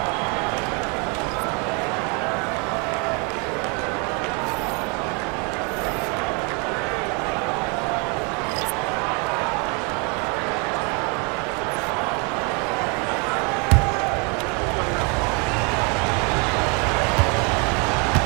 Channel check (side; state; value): left; quieter; 33.3 dB